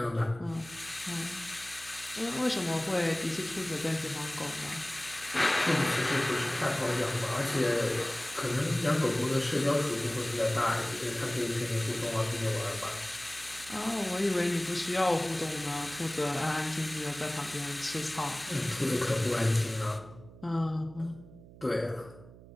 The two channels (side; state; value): right; noise; hum, 19 dB below the sound